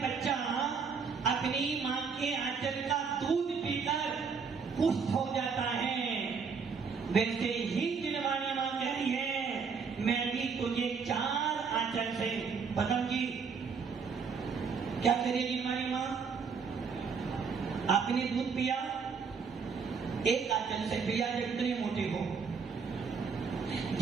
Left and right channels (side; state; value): left; quieter; 5.6 dB